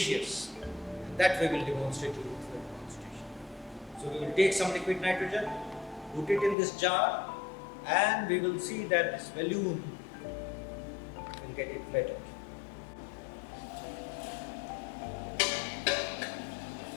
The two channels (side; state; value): right; drops out; at 6.6 s